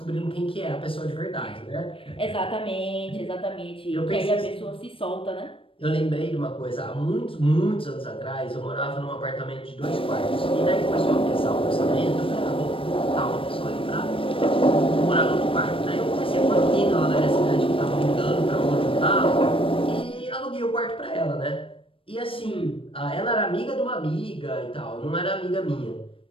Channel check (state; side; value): late; right; 0.26 ms